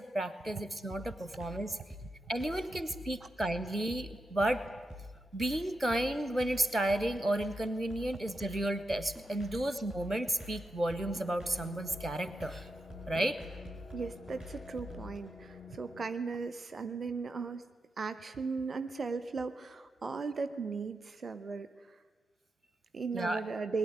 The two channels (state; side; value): normal; both; correlation 0.87